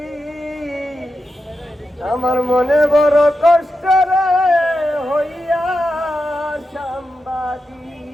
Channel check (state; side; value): normal; both; correlation 0.89